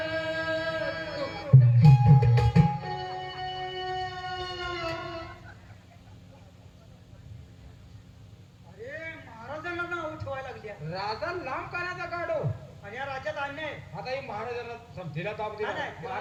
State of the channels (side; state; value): both; identical; correlation 1.00